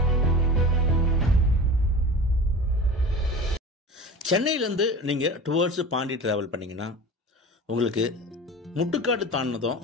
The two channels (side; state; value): both; normal; correlation 0.34